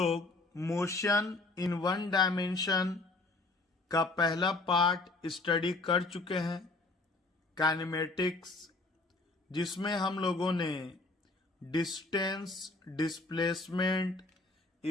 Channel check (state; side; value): quieter; right; 3.2 dB